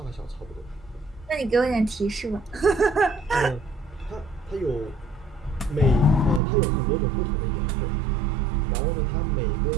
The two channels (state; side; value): drops out; left; at 6.4 s